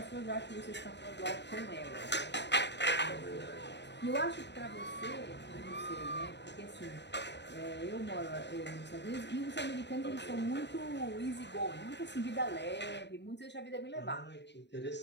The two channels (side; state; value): right; late; 0.51 ms